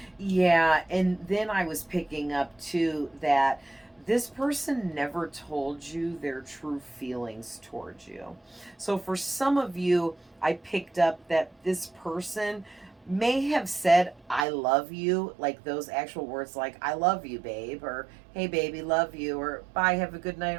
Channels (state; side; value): drops out; left; at 14.5 s